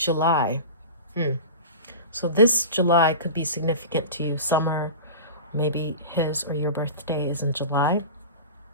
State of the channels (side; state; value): both; inverted; correlation -0.31